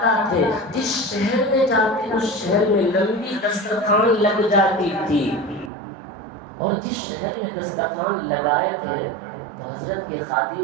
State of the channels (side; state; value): left; drops out; at 5.7 s